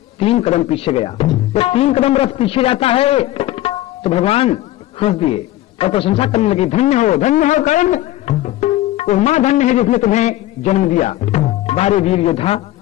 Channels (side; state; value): right; quieter; 15.4 dB